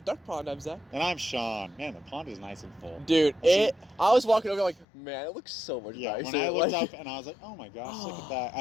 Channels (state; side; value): drops out; right; at 4.9 s